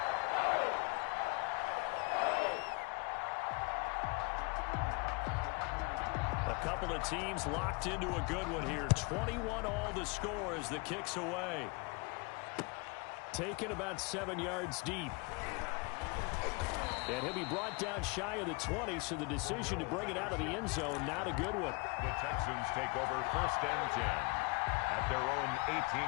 A couple of teams locked into a good one here. 21 all the score as the kick's away. Taken about 7 yards deep. And he'll be brought down shy of the 20, so the decision to bring it out of the end zone, not a good one. The Texans take over first and 10 at their own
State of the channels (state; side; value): quieter; right; 29.5 dB